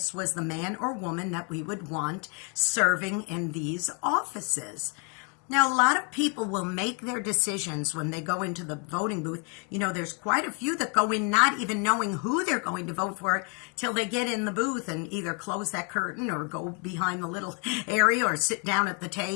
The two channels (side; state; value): right; quieter; 36.5 dB